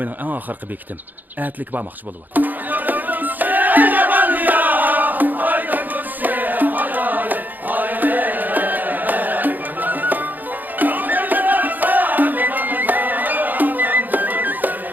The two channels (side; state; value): left; late; 0.085 ms